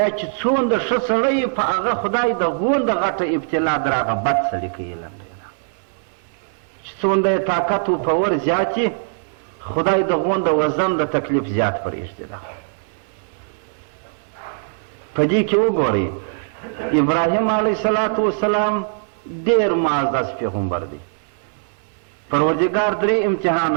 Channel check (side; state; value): left; silent; 65 dB below the other